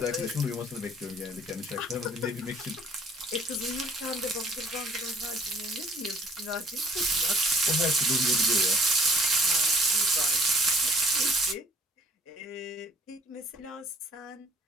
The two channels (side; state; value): both; normal; correlation 0.56